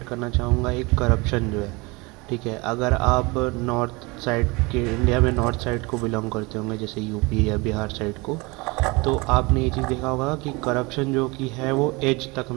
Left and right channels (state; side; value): quieter; left; 25.8 dB